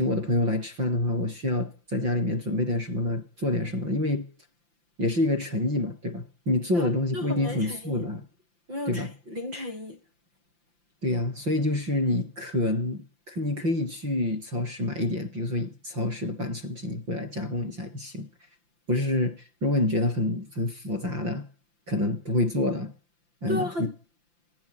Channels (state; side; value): late; left; 5.8 ms